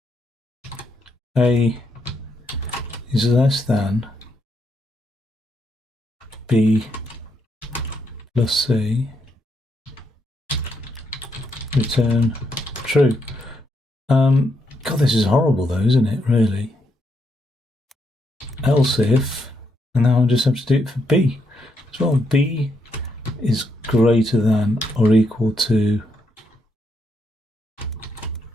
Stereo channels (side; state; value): both; normal; correlation 0.78